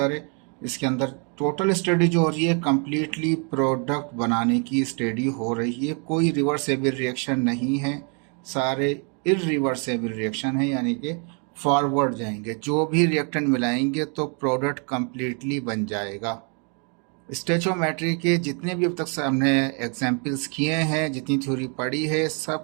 है, इसके अंदर टोटल स्टडी जो हो रही है कम्प्लीटली प्रोडक्ट बनाने की स्टडी हो रही है। कोई रिवर्सेबल रिएक्शन नहीं है, सारे इरिवर्सेबल रिएक्शन है, यानी कि फॉरवर्ड जाएंगे। जो भी रिएक्टेंट मिलाएंगे तो प्रोडक्ट कम्प्लीटली बन जाएगा। स्टेचोमेट्री के जितने भी अब तक हमने एग्जाम्पल्स किए हैं, जितनी थ्योरी पढ़ी है,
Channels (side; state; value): left; quieter; 38.0 dB